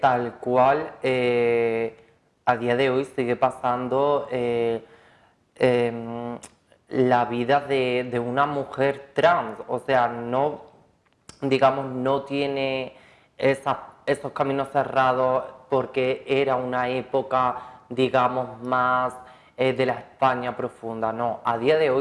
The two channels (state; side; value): identical; both; correlation 1.00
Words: cual a día de hoy sigue pasando la vida de una mujer trans. O sea, no, digamos, no tiene esos caminos cerrados porque era una época, digamos, más de la España profunda. No, a día de